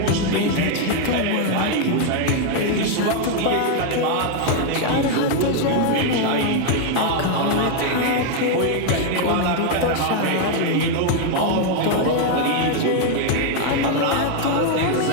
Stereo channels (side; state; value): both; different; correlation 0.00